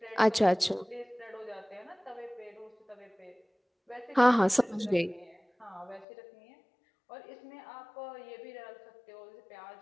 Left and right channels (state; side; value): drops out; right; at 6.1 s